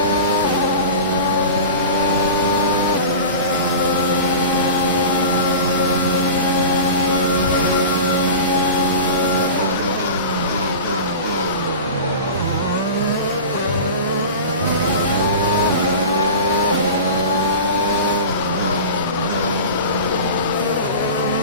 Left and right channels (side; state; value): both; inverted; correlation -0.32